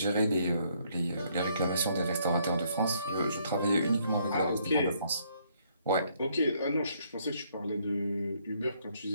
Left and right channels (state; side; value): inverted; both; correlation -0.69